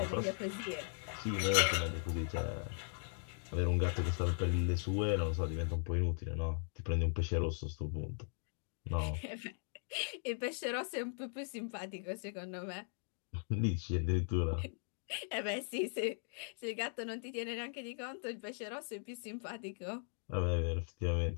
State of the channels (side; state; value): right; silent; 52 dB below the other